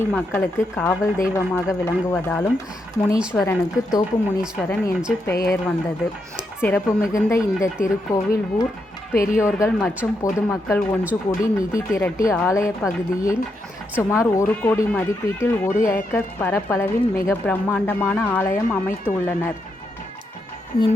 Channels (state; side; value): normal; both; correlation 0.82